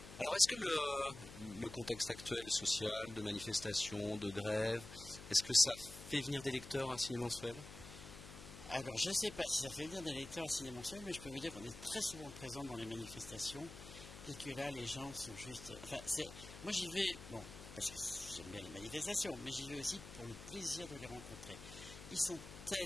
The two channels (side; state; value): left; noise; hum, 14 dB below the sound